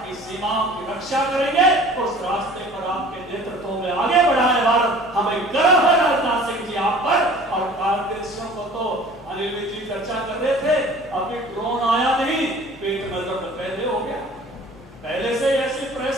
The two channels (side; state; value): both; normal; correlation 0.47